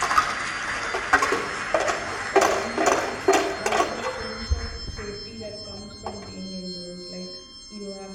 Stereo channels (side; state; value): both; identical; correlation 1.00